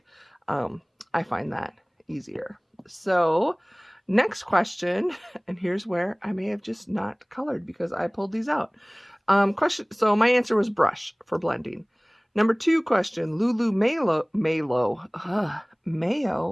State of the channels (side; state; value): both; identical; correlation 1.00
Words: I find that easier. So next question, and here's where I may have just not colored because I pulled these out. So my answer was brush for blending. Number 2 question, Lulu, Mayo